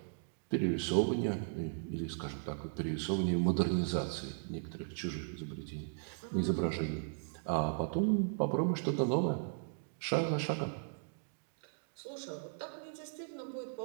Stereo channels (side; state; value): left; silent; digital silence